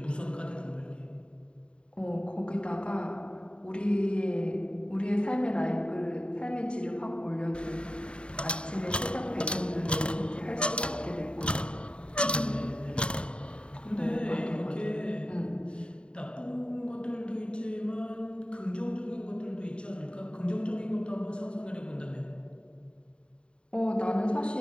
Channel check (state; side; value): late; right; 0.054 ms